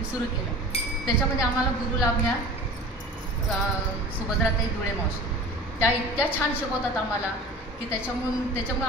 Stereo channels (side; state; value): both; normal; correlation 0.38